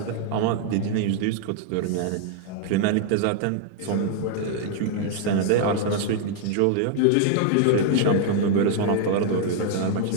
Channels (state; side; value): different; both; correlation 0.00